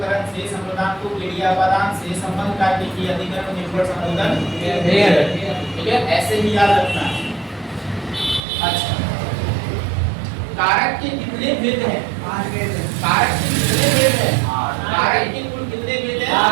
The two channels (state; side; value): drops out; left; at 8.4 s